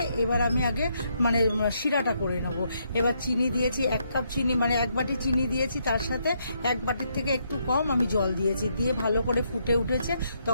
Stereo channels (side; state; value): both; inverted; correlation -0.76